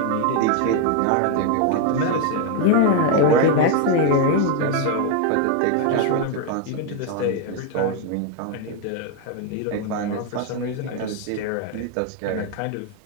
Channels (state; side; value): different; both; correlation 0.01